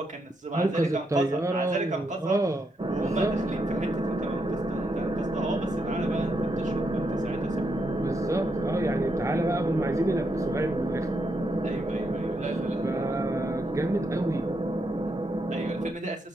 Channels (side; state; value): both; normal; correlation 0.80